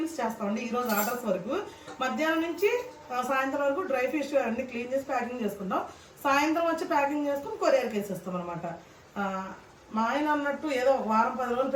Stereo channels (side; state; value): both; identical; correlation 1.00